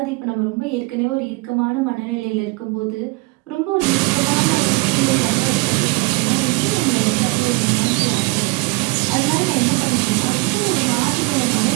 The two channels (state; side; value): quieter; left; 26.0 dB